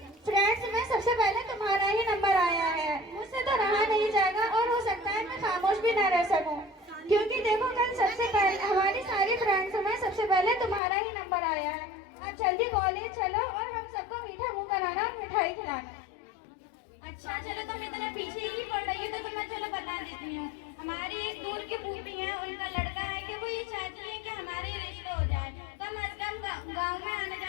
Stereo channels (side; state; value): right; drops out; at 10.8 s